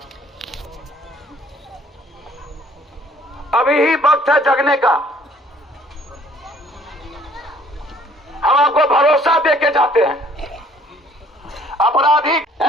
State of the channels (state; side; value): normal; both; correlation 0.58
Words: अभी ही वक्त है जगने का। हम आपको भरोसा देके जाते हैं। अपराधी